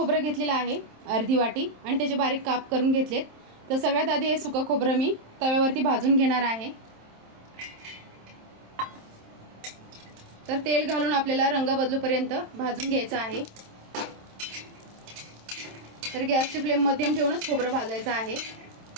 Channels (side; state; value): left; late; 27 ms